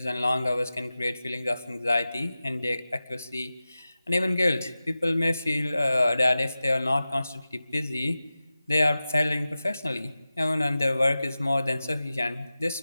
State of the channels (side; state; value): both; inverted; correlation -0.95